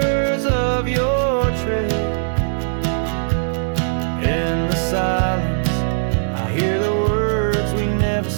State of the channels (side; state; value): left; silent; digital silence